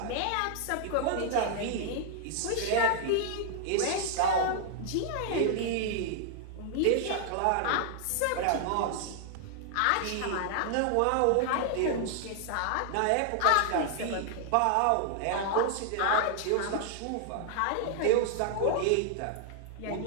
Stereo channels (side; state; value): both; different; correlation 0.00